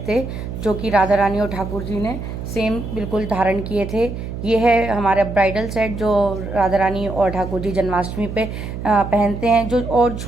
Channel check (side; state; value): right; noise; hum, 7 dB below the sound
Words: थे जो कि राधा रानी और ठाकुर जी ने सेम बिल्कुल धारण किए थे। ये है हमारा ब्राइडल सेट जो राधा रानी और ठाकुर जी जन्माष्टमी पे पहनते हैं। जो और